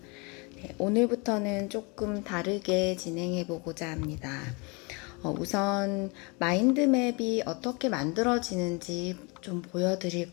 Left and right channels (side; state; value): right; quieter; 29.6 dB